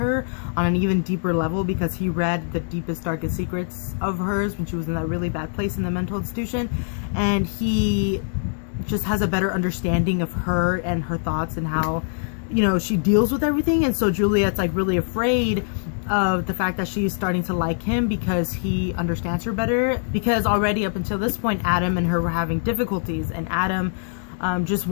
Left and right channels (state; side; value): silent; right; digital silence